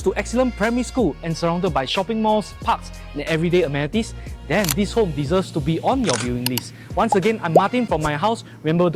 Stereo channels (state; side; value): identical; both; correlation 1.00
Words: to excellent primary school and surrounded by shopping malls, parks and everyday amenities, then this home deserves to be on your viewing list. Once again, I'm Martin from my house. Remember